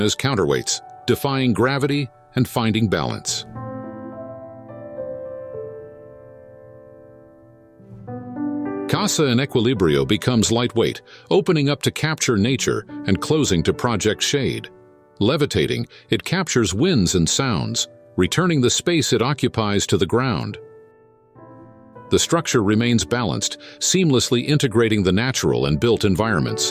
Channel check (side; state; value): both; identical; correlation 1.00